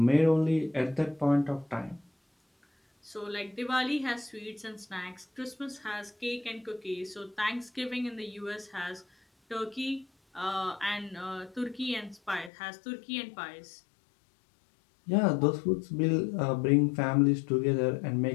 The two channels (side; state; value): right; drops out; at 12.5 s